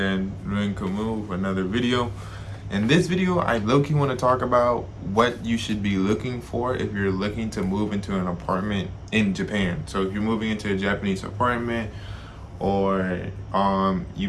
Ruin Kamu, for another video. In this video, I low-key want to talk about what you should be looking for if you're looking to move into an apartment in Japan. So if you're moving into a Japanese apartment, or you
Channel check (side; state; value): both; identical; correlation 1.00